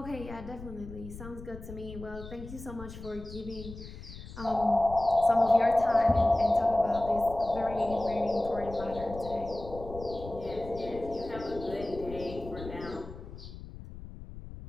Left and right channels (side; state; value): left; noise; rumble, 13 dB below the sound